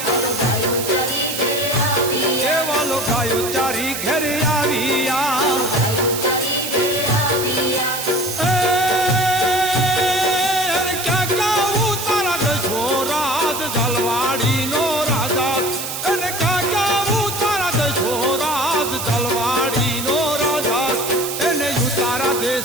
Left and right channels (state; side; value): noise; right; hiss, 5 dB below the sound